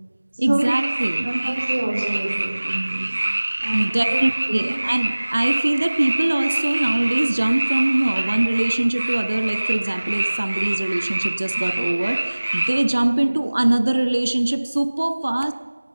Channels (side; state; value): both; inverted; correlation -1.00